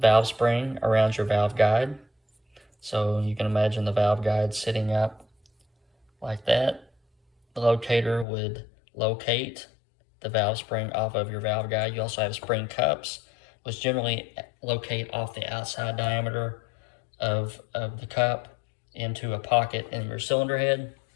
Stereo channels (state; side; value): drops out; right; at 8.2 s